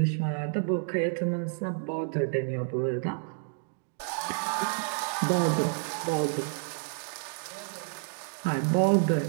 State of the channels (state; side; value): silent; left; digital silence